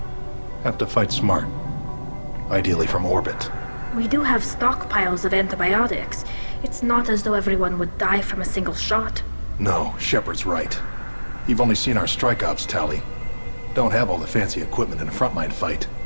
Have to fight smart. Ideally from orbit. We do have stockpiles of antibiotics. It's not as though everyone would die from a single shot. No, Shepard's right. You've only seen our strike ops tally. Don't have all the fancy equipment in a frontline fight.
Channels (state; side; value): inverted; both; correlation -1.00